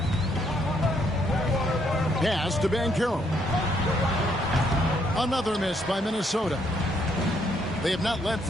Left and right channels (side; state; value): both; normal; correlation 0.72